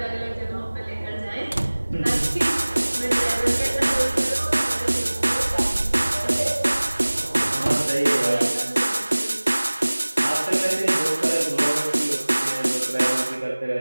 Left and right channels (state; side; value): inverted; both; correlation -1.00